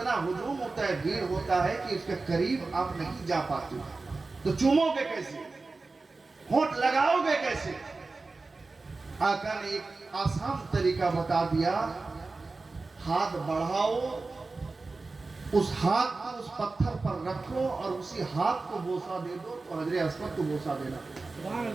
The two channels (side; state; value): left; quieter; 3.7 dB